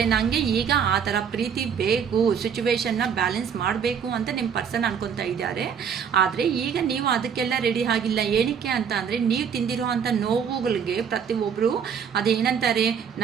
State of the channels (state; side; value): quieter; left; 7.3 dB